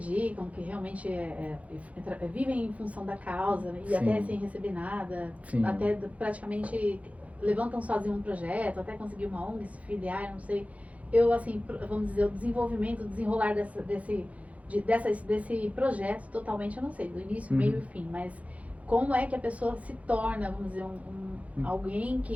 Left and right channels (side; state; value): left; late; 0.067 ms